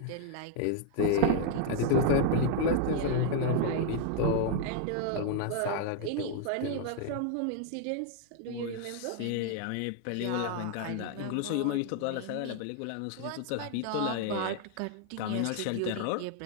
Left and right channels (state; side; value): different; both; correlation 0.00